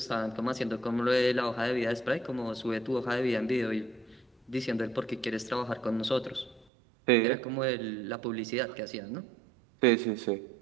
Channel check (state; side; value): drops out; left; at 6.7 s